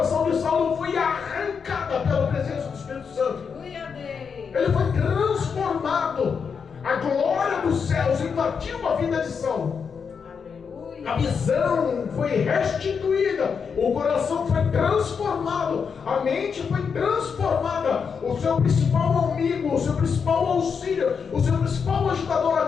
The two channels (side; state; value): right; quieter; 6.2 dB